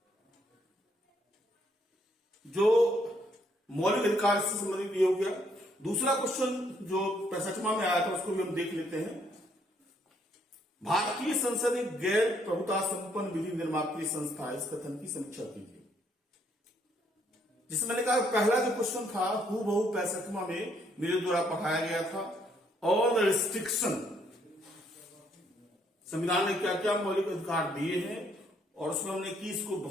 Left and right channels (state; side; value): normal; both; correlation 0.70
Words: जो मौलिक अधिकार से संबंधित ये हो गया। दूसरा क्वेश्चन जो 65वां में आया था उसको भी हम देख लेते हैं। भारतीय संसद एक गैर प्रभुता संपन्न विधि निर्मात्री संस्था है, इस कथन की समीक्षा कीजिए। जिसमें मैंने कहा पहला जो क्वेश्चन था हूबहू 65वां में मेरे द्वारा पढ़ाया गया था। ऑल रिस्ट्रिक्शन, संविधान ने क्या क्या मौलिक अधिकार दिए हैं, और उसमें हमने कीस को